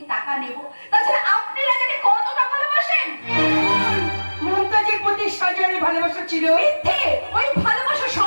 টাকা নেব? তাছাড়া আপনি রাজাকে কতটা ভালোবাসেন? মমতাজের প্রতি শাহজাহানের ভালোবাসা ছিল মিথ্যে, ওই ভালোবাসা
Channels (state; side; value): inverted; both; correlation -1.00